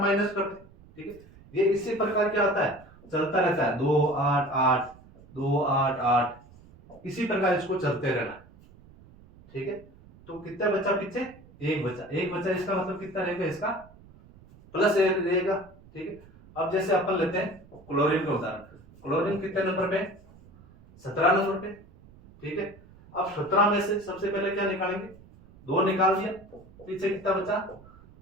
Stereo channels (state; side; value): noise; right; rumble, 24 dB below the sound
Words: माइनस करते। ठीक है, ये इसी प्रकार क्या होता है, चलता रहता है, 2 8 8 2 8 8, इसी प्रकार इसको चलते रहना। ठीक है, तो कितना बचा पीछे, 1 बचा। 1 बचा, इसका मतलब कितना रहेगा, इसका +1 रहेगा। ठीक है, अब जैसे अपन लेते हैं क्लोरीन का उदाहरण। क्लोरीन कितने नंबर पे, 17 नंबर पे। ठीक है, अब 17 में से सबसे पहले क्या निकालेंगे, 2 निकाल दिया, पीछे कितना बचा,